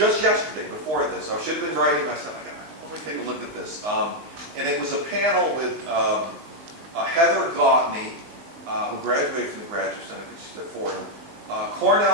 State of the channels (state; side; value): late; left; 19 ms